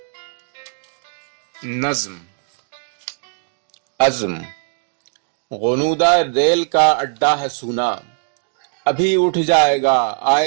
नज्म अज़्म। गुनूदा रेल का अड्डा है सूना, अभी उठ जाएगा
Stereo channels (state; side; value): silent; left; 64 dB below the other